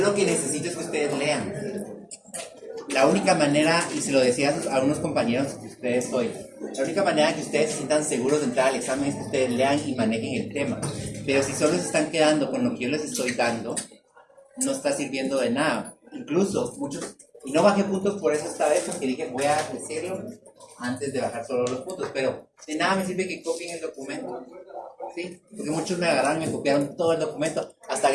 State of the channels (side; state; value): both; identical; correlation 1.00